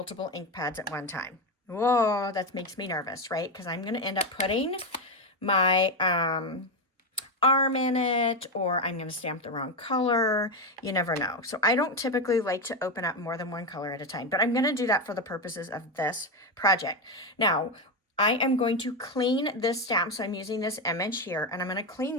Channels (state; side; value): normal; both; correlation 0.11